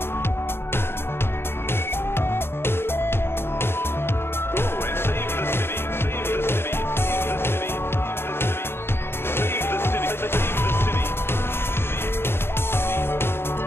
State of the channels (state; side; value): late; right; 0.11 ms